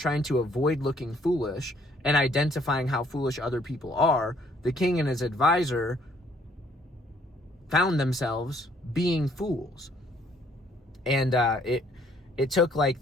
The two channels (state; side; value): normal; both; correlation 0.64